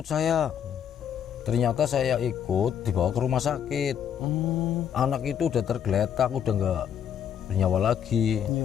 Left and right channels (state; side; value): quieter; right; 8.8 dB